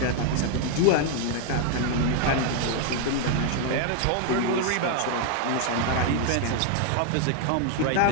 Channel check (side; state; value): both; different; correlation 0.00